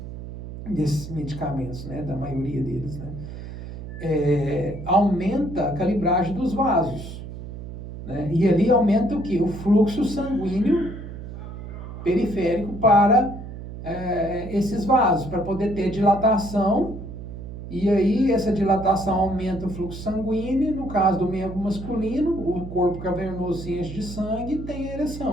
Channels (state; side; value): noise; right; hum, 10 dB below the sound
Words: desses medicamentos, né, da maioria deles, né, aumenta a calibragem dos vasos, né, e ali aumenta o quê? O fluxo sanguíneo periférico para esses vasos, para poder ter dilatação. E aí essa dilatação aumenta o fluxo sanguíneo, no caso do membro masculino, o corpo cavernoso se enche de sangue e tem